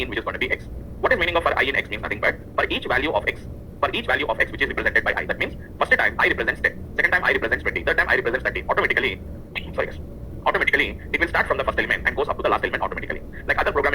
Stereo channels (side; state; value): both; identical; correlation 1.00